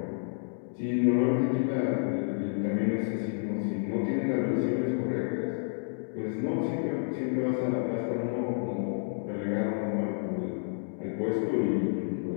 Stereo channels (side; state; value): right; silent; digital silence